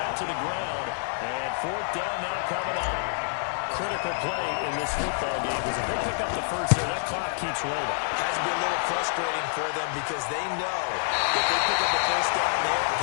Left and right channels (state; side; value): silent; right; digital silence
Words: to the ground. And 4th down now coming up. Critical play in this football game because if they pick up the first there, that clock keeps rolling. Has to be a little frustrating for them because they know that they pick up the first down there and